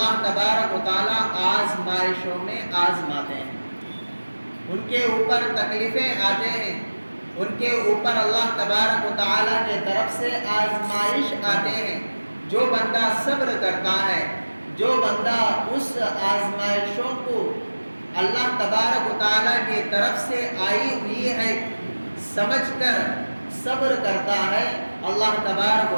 تبارک و تعالی آزمائشوں میں آزماتے ہیں، ان کے اوپر تکلیفیں آتے ہیں، ان کے اوپر اللہ تبارک و تعالی کے طرف سے آزمائش آتے ہیں۔ جو بندہ صبر کرتا ہے، جو بندہ اس آزمائشوں کو اللہ تبارک و تعالی کی طرف سے آئی ہوئی ہے سمجھ کر صبر کرتا ہے، اللہ تبارک و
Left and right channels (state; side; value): inverted; both; correlation -1.00